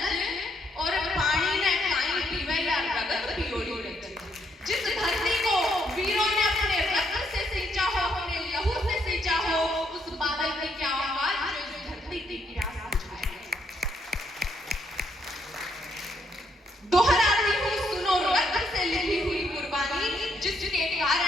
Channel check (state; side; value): normal; both; correlation 0.74